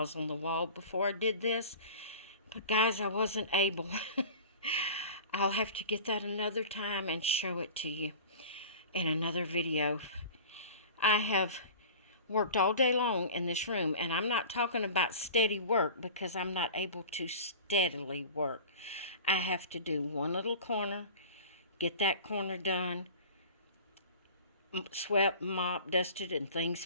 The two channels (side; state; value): both; inverted; correlation -0.38